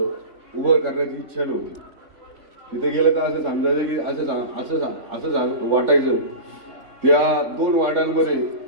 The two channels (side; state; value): left; late; 3.6 ms